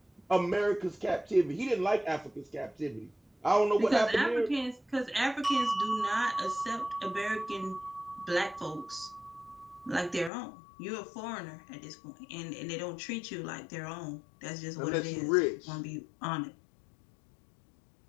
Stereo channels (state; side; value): drops out; right; at 10.3 s